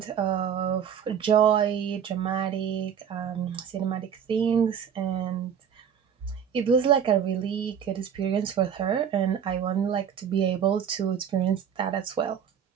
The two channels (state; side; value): quieter; left; 8.2 dB